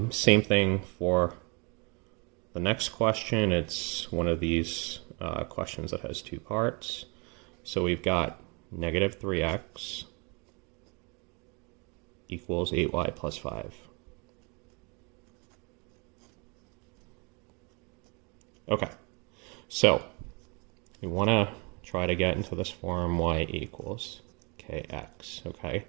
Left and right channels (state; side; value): quieter; left; 31.4 dB